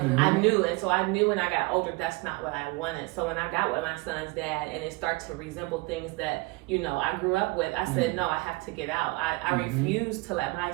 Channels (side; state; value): left; quieter; 24.9 dB